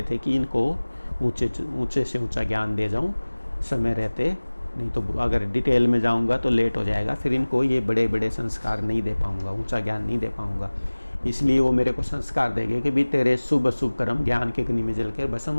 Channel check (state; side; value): inverted; both; correlation -1.00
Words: थे कि इनको ऊंचे से ऊंचा ज्ञान दे जाऊं समय रहते, नहीं तो अगर डिटेल में जाऊंगा तो लेट हो जाएगा, फिर इनको ये बड़े बड़े संस्कार नहीं दे पाऊंगा, ऊंचा ज्ञान नहीं दे पाऊंगा। इसलिए वो मेरे को संस्कार देंगे कि भी तेरे शुभ अशुभ कर्म ज्ञान के अग्नि में जलकर भस्म